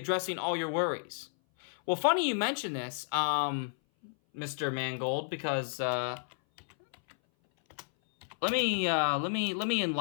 all your worries." Well, funny you mention this, Mr. Mangold, because let me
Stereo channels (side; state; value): right; silent; 57 dB below the other